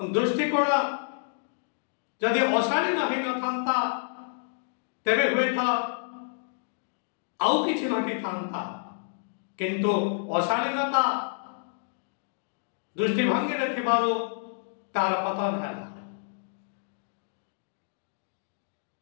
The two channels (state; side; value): silent; right; digital silence